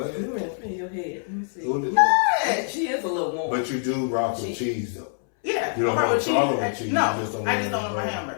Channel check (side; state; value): right; silent; 62 dB below the other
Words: You in your head. Let me see. What? She is a little warm. But you do rock with cheese, though. Yeah. You don't have a problem with cheese. No, I just don't want my